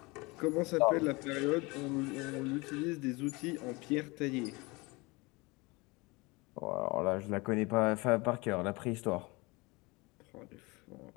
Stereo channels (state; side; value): quieter; right; 25.0 dB